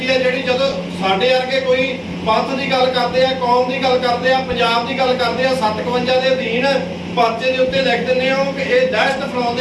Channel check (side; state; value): both; identical; correlation 1.00